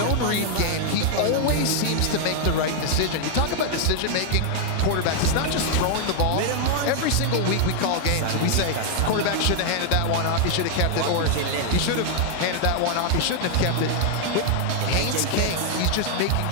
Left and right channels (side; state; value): both; different; correlation 0.00